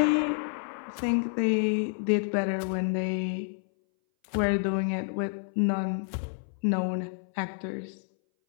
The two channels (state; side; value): silent; right; 59 dB below the other